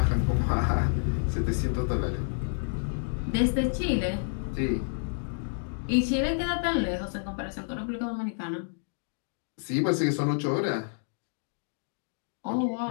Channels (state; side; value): silent; right; digital silence